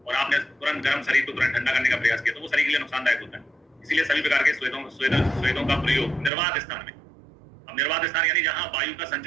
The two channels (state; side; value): drops out; left; at 6.3 s